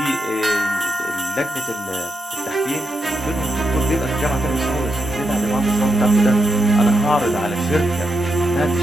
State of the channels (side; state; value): both; normal; correlation 0.85